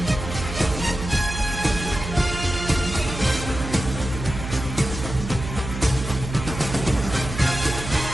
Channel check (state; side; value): noise; right; hum, 7 dB below the sound